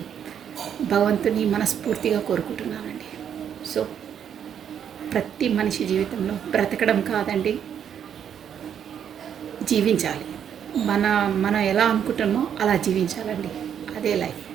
భగవంతుని మనస్ఫూర్తిగా కోరుకుంటున్నానండి. సో ప్రతి మనిషి జీవితంలో బ్రతకడం కాదండి, జీవించాలి. మనం ఎలా అనుకుంటామో అలా జీవించాలండి. అదే లైఫ్.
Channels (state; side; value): quieter; left; 8.7 dB